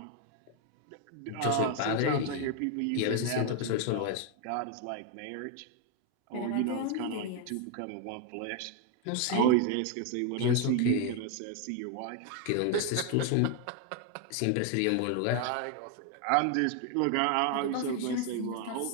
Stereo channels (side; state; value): both; different; correlation 0.01